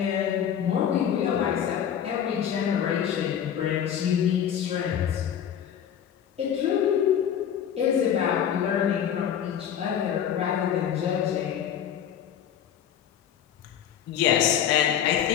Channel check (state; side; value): quieter; right; 9.2 dB